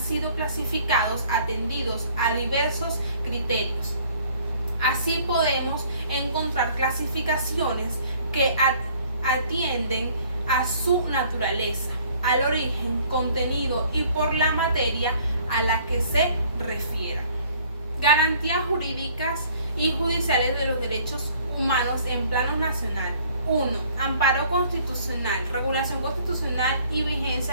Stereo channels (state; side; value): inverted; both; correlation -0.57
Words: clasificados atendidos a diversos criterios. Así podemos encontrar clasificaciones que atienden a su naturaleza, al origen, contenido y por la materia a la que se refieran. Garantías jurídicas y judiciales de los derechos humanos en plano nacional. 1. Amparo constitucional, regulación constitucional y